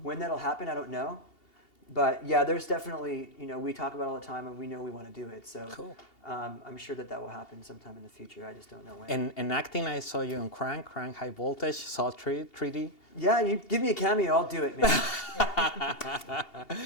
when that'll happen, I don't know. But yeah, there's definitely, you know, we talk about it all the time, and we know we want to do it. So cool. I'm sure that will happen sometime in the future. I just don't know when. And acting, I saw you on Crank High Voltage, saw 3D. Yeah, you give me a cameo, I'll do it, man.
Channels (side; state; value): right; late; 2.8 ms